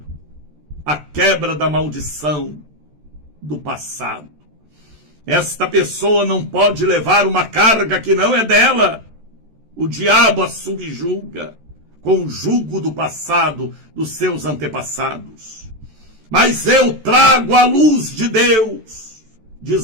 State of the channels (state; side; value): late; left; 13 ms